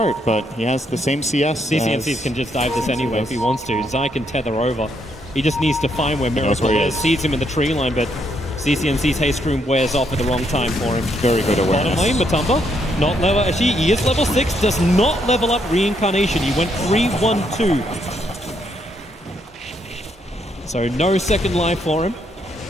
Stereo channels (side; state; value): both; normal; correlation 0.75